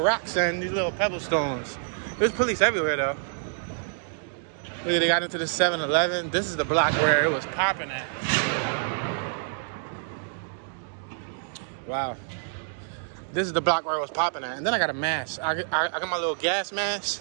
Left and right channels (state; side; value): silent; left; digital silence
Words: rocks and these little pebble stones. There's police everywhere though. Look, they got into the 7-Eleven. This is the block where it was popping at. Wow. This is the block where it was popping at. And then I got a mask. I got my little gas